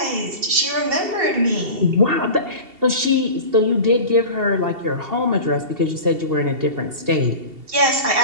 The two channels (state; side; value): late; left; 2.7 ms